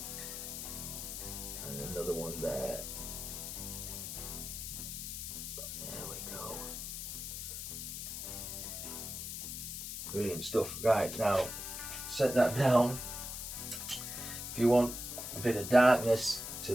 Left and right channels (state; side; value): noise; left; hiss, 6 dB below the sound